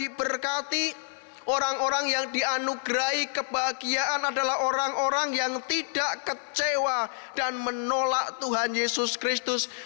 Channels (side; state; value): right; silent; 59 dB below the other